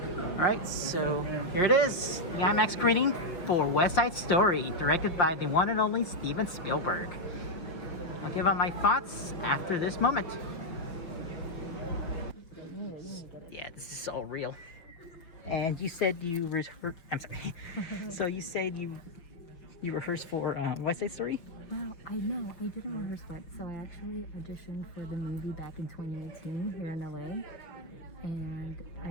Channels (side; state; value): right; late; 5.7 ms